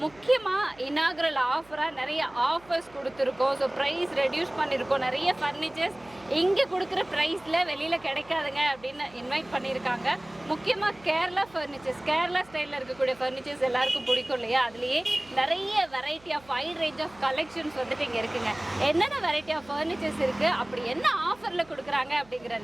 முக்கியமாக இனாக்ரல் ஆஃபராக நிறைய ஆஃபர்ஸ் கொடுத்துருக்கோம். ஸோ ப்ரைஸ் ரெடியூஸ் பண்ணியிருக்கோம். நிறைய ஃபர்னிச்சர்ஸ் இங்கே கொடுக்குற ப்ரைஸில் வெளியில் கிடைக்காதுங்க அப்படின்னு இன்வைட் பண்ணியிருக்காங்க. முக்கியமாக கேரளா ஃபர்னிச்சர்ஸ், கேரளா ஸ்டைலில் இருக்கக்கூடிய ஃபர்னிச்சர்ஸ் எல்லாருக்கும் பிடிக்கும் இல்லையா? அதுலேயே நிறைய variety of wide range of collections வந்துட்டு இங்கே இருக்குங்க. என்னென்ன வெரைட்டி ஆஃப் ஃபர்னிச்சர்ஸ் இருக்குது, அப்படி என்ன ஆஃபரில் கொடுக்குறாங்க அப்படிங்கிற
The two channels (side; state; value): right; noise; hum, 26 dB below the sound